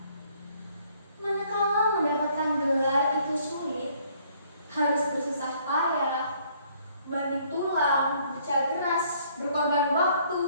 Manakala mendapatkan gelar itu sulit, harus bersusah payah, banting tulang, bekerja keras, berkorban waktu,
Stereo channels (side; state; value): both; inverted; correlation -0.63